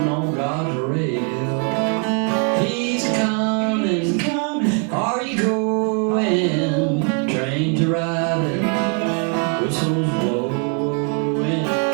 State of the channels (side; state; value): left; quieter; 39.1 dB